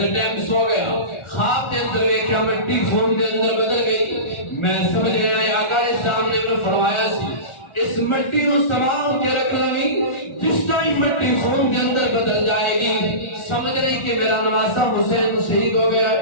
کے ٹائم سو گیا خواب کے اندر دیکھا مٹی خون کے اندر بدل گئی. میں سمجھ گیا آقا اسلام نے فرمایا سی اس مٹی کو سنبھال کے رکھ لگی جس ٹائم مٹی خون کے اندر بدل جائے گی سمجھ رہی کہ میرا نواسا حسین شہید ہو گیا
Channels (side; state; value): right; late; 1.4 ms